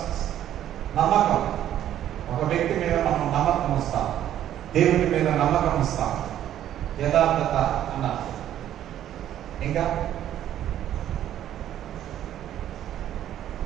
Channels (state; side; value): quieter; left; 11.5 dB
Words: నమ్మకం. ఒక వ్యక్తి మీద మనం నమ్మకం వస్తాం, దేవుడి మీద నమ్మకం వస్తాం. యథార్థత అన్నారు.